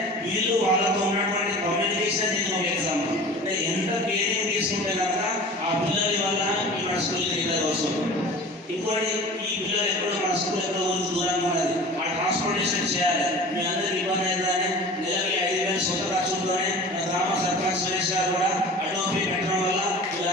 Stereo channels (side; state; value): both; normal; correlation 0.39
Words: వీళ్ళు వాళ్ళతో ఉన్నటువంటి కమ్యూనికేషన్ దీనికి ఒక ఎగ్జాంపుల్. అంటే ఎంత కేరింగ్ తీసుకుంటే కనుక ఆ పిల్లల వల్ల మన స్కూల్కి రెగ్యులర్ వస్తుంది. ఇంకోటి ఈ పిల్లలు ఎక్కడో మన స్కూల్ ఎక్కడో ఊరికి దూరంగా ఉన్నది, ఆ ట్రాన్స్పోర్టేషన్ చేయాలి. మీ అందరికి ఇబ్బంది అవుతుందని నెలకి 5,000 సొంత ఖర్చులతోనే మన గ్రామ సర్పంచ్ సురేష్ గారు కూడా అటోపీ పెట్టడం వల్ల